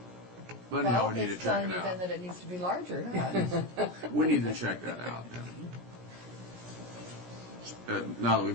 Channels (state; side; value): late; left; 17 ms